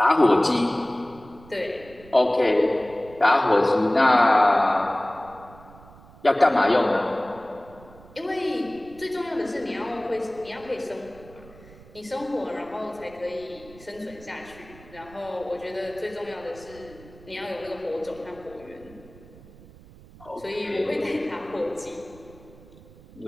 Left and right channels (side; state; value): right; noise; rumble, 22 dB below the sound